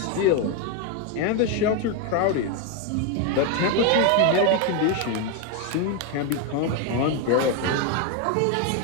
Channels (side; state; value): both; different; correlation 0.01